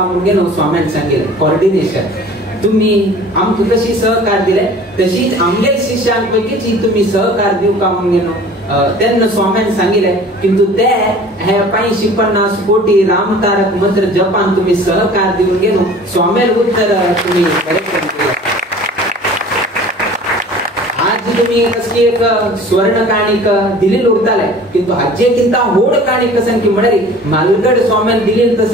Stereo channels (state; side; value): normal; both; correlation 0.45